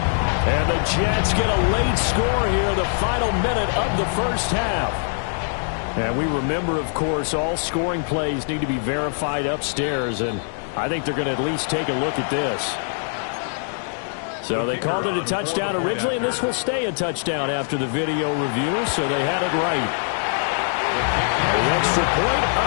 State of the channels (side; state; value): right; silent; digital silence